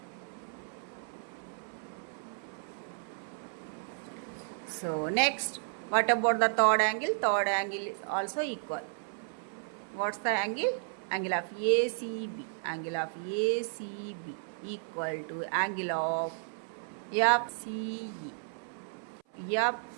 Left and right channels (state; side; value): silent; left; 56 dB below the other